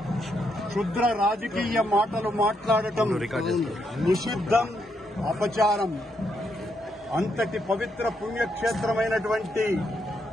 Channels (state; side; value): normal; both; correlation 0.78